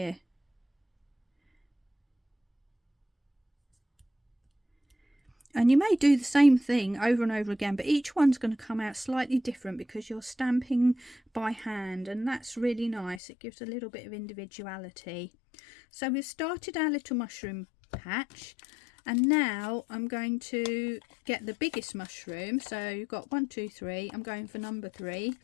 And you may do the same thing over and over again, but each one's going to come out slightly different because you're stamping by hand, and that's really nice. It gives a little bit of individuality. So we've started our little mushroom patch, and now I'm going to get the biggest mushroom. So you've got 1, 2, 3. I'm going for number 3.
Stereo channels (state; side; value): drops out; right; at 13.2 s